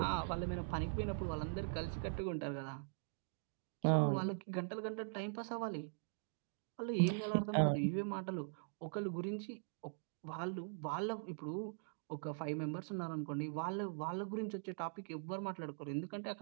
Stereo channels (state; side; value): silent; left; digital silence